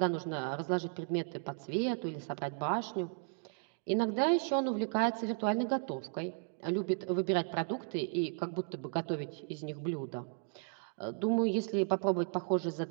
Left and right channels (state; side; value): silent; left; 54 dB below the other